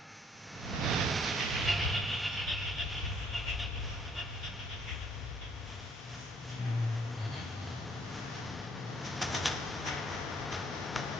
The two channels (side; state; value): both; normal; correlation 0.63